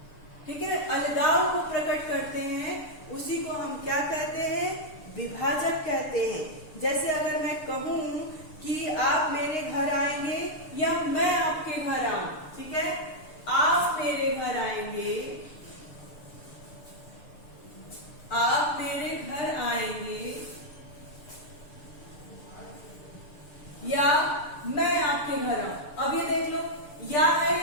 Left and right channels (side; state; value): right; late; 6.8 ms